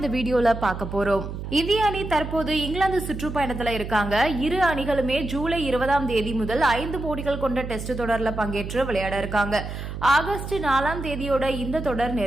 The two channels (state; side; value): noise; right; hum, 7 dB below the sound